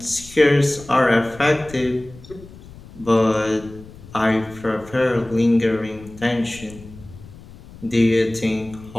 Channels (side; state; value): left; noise; rumble, 19 dB below the sound